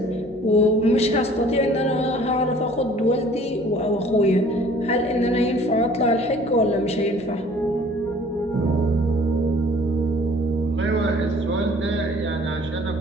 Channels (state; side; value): noise; left; hum, 24 dB below the sound